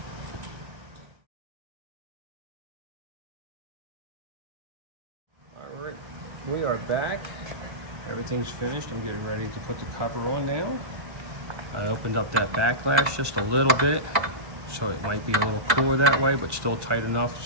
All right, we are back. Everything's finished. I'm getting ready to put the cover on now. I opened up that backlash just a little bit, so it might be a little cooler that way, but still tight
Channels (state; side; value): late; left; 1.3 ms